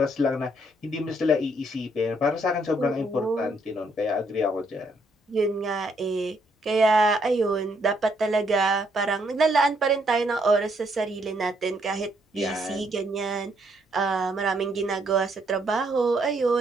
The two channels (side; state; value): both; normal; correlation 0.72